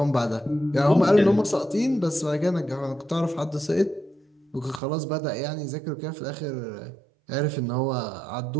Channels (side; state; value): left; drops out; at 4.8 s